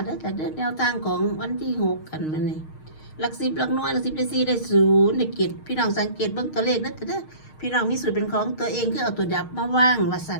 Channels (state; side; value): late; right; 6.5 ms